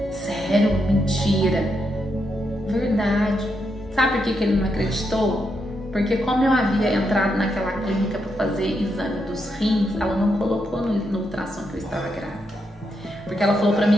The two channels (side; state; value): both; normal; correlation 0.82